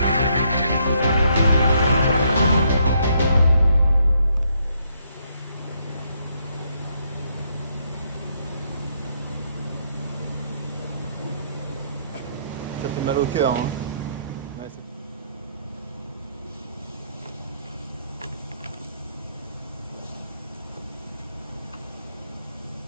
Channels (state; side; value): inverted; both; correlation -0.72